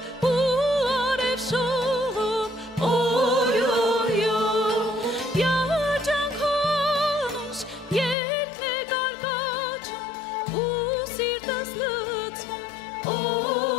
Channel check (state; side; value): drops out; right; at 8.2 s